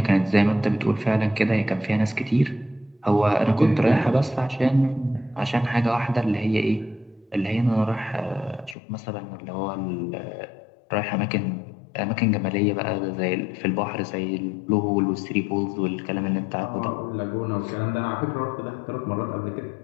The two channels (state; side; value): drops out; right; at 8.8 s